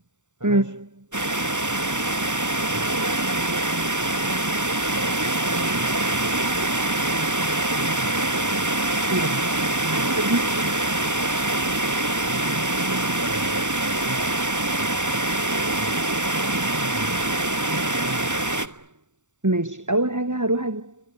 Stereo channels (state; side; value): late; left; 0.85 ms